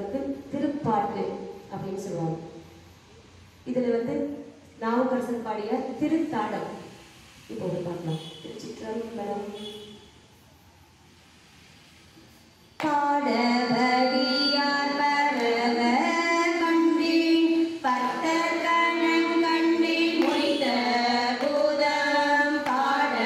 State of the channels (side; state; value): both; identical; correlation 1.00